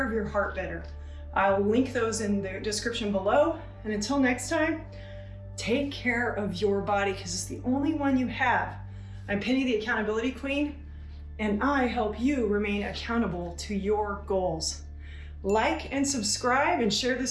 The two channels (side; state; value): both; identical; correlation 1.00